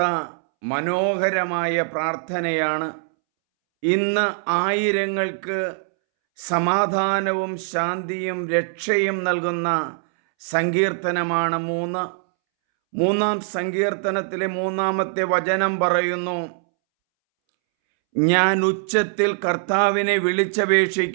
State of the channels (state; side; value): silent; left; 64 dB below the other